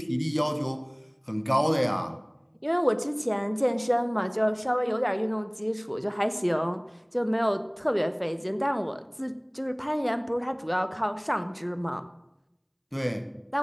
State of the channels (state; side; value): identical; both; correlation 1.00